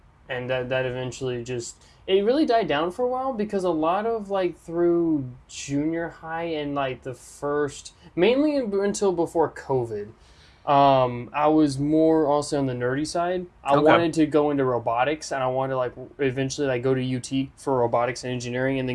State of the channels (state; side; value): identical; both; correlation 1.00